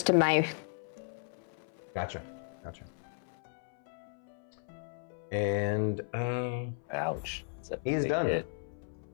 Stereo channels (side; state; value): right; silent; 54 dB below the other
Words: to my. Gotcha. And, Ouch. That's a he is big done. hit.